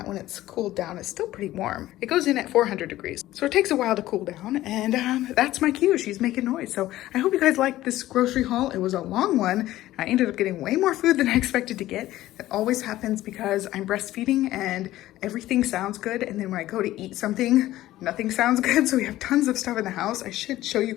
when it's cooled down. It's still pretty warm. It goes in at 400 degrees. So it takes a while to cool down, and that's my cue. She's making noise. So I hope you guys liked this grocery haul. It was a long one. I ended up getting way more food than I expected to get. That always happens because I'm breastfeeding and everything sounds good. And then when I go to eat something, nothing sounds good. So we have tons of stuff in the house. I should show you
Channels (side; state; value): right; quieter; 15.3 dB